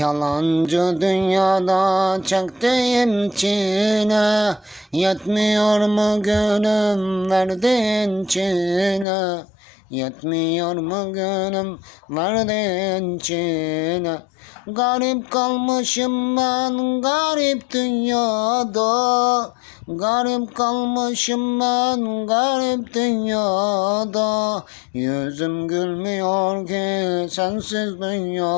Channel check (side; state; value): right; drops out; at 9.1 s